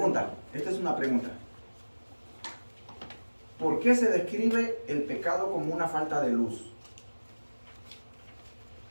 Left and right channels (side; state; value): both; inverted; correlation -1.00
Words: esta es una pregunta. ¿Por qué se describe el pecado como una falta de luz?